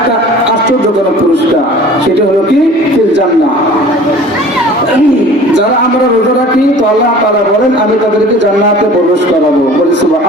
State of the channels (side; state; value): both; normal; correlation 0.45